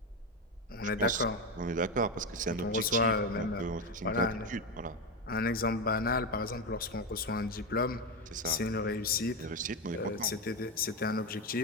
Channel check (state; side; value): normal; both; correlation 0.13